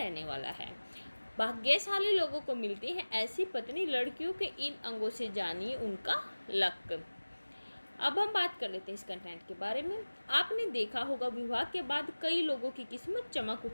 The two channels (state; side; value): inverted; both; correlation -1.00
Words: वाला है। भाग्यशाली लोगों को मिलती है ऐसी पत्नी, लड़कियों के इन अंगों से जानिए उनका लक। अब हम बात कर लेते हैं इस कंटेंट के बारे में। आपने देखा होगा विवाह के बाद कई लोगों की किस्मत चमक